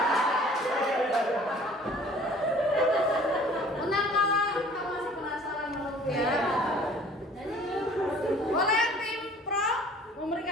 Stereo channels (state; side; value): normal; both; correlation 0.51